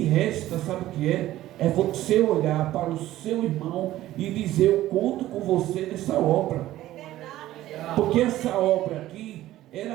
resta, sabe o que é? É você olhar para o seu irmão e dizer: eu conto com você nessa obra. Porque essa obra aqui,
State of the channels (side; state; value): left; quieter; 14.7 dB